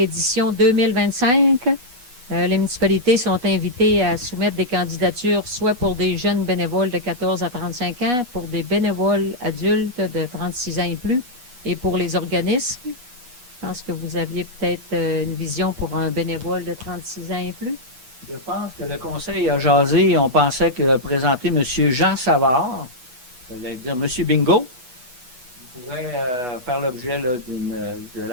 2025. Les municipalités sont invitées à soumettre des candidatures soit pour des jeunes bénévoles de 14 à 35 ans, pour des bénévoles adultes de 36 ans et plus, et pour les organismes. Je pense que vous aviez peut-être une vision pour un bénévole de 36 ans et plus. Je pense que le conseil a jasé et on pensait que présenter M. Jean Savard, ça veut dire M. Bingo, pourrait faire l'objet de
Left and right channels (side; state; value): left; late; 8.2 ms